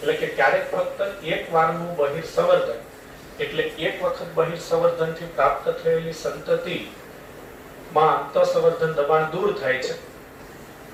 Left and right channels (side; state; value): both; identical; correlation 1.00